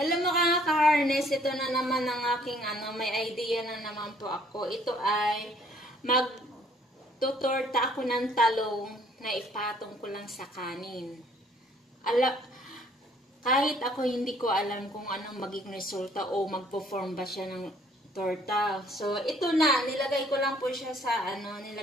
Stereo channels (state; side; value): normal; both; correlation 0.61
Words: mga ka-harness, ito na naman ang aking may idea na naman po ako. Ito ay magtutorta ako ng talong na ipatong ko lang sa kanin. Kahit ako hindi ko alam kung anong magiging resulta o magpo-form ba siya ng torta. So ito na, nilagay ko lang po siya sa